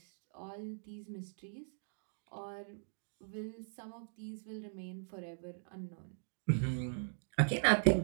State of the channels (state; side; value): silent; left; digital silence